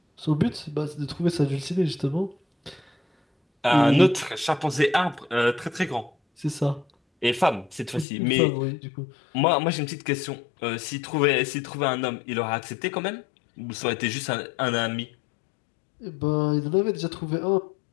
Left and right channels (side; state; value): right; drops out; at 8.1 s